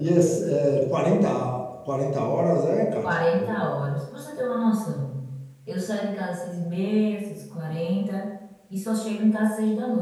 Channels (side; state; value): both; identical; correlation 1.00